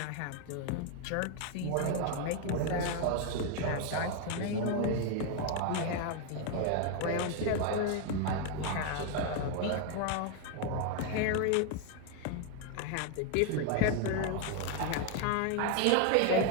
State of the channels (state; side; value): different; both; correlation 0.01